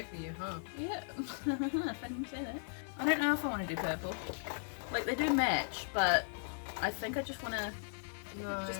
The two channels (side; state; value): right; silent; digital silence